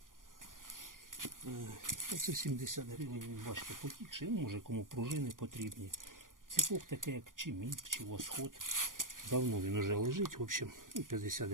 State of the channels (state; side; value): late; left; 0.90 ms